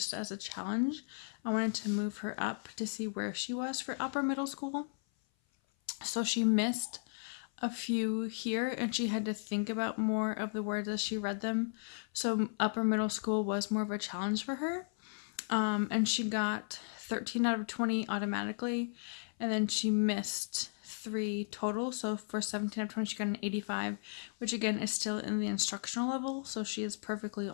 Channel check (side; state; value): right; silent; 54 dB below the other